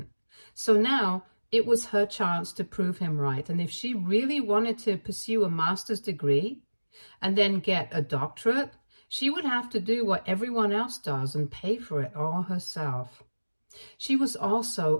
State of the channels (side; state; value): both; inverted; correlation -1.00